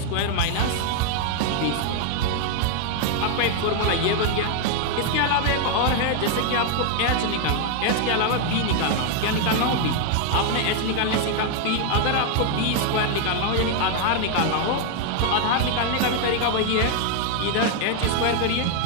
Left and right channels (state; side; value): different; both; correlation 0.00